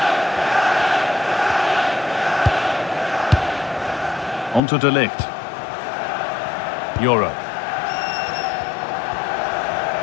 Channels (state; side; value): drops out; right; at 4.6 s